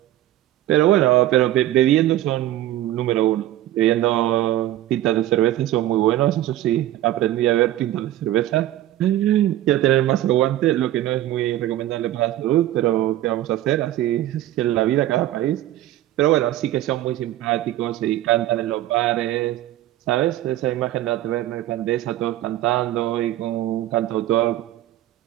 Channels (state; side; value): quieter; left; 14.0 dB